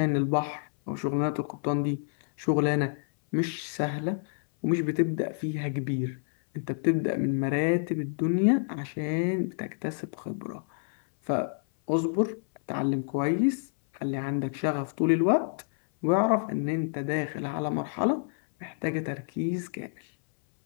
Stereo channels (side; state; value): right; silent; 59 dB below the other